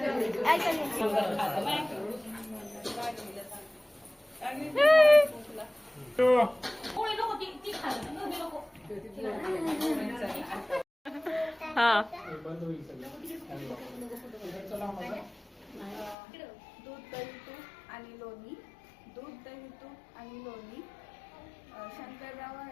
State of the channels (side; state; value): right; drops out; at 16.2 s